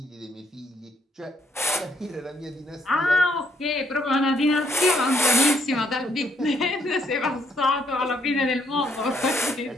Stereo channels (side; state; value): both; normal; correlation 0.71